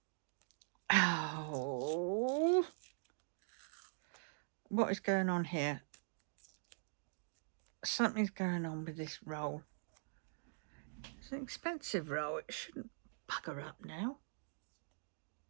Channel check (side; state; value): left; silent; digital silence